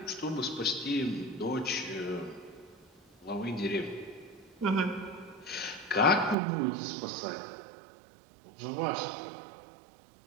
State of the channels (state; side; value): drops out; left; at 6.4 s